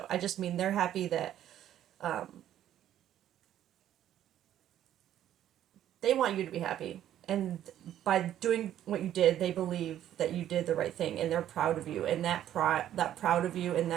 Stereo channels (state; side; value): quieter; left; 11.5 dB